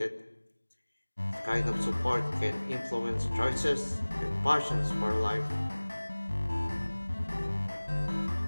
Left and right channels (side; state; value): both; inverted; correlation -1.00